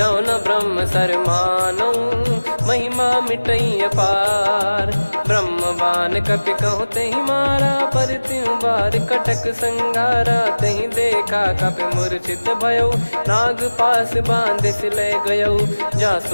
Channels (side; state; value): both; inverted; correlation -1.00